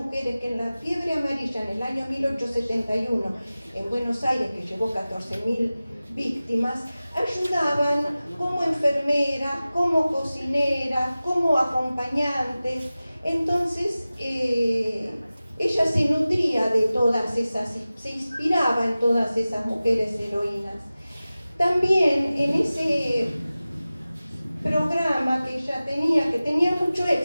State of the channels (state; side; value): inverted; both; correlation -0.96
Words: que en la fiebre amarilla en el año 1871 en Buenos Aires, que llevó 14.000 víctimas, ayudaban como enfermeras, como cocineras, como acompañantes. Entonces ella se nutría de todas esas, se inspiraba en todas esas mujeres heroínas. También en ese programa que ella tenía, que tenía mucho